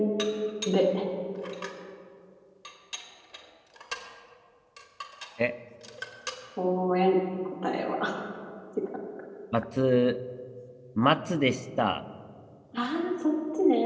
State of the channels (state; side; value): identical; both; correlation 1.00